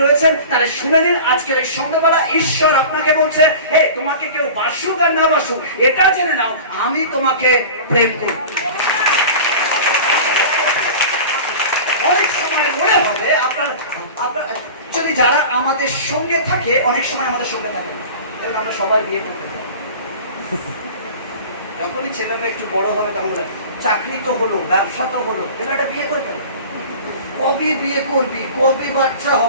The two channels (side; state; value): both; inverted; correlation -0.37